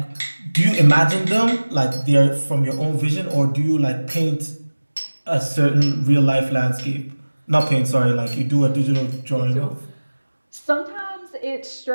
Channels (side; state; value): both; inverted; correlation -1.00